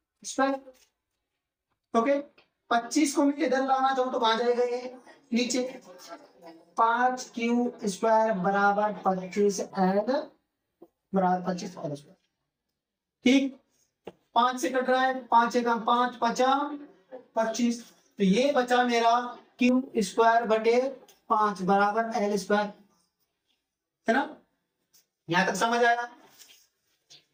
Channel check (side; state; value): both; identical; correlation 1.00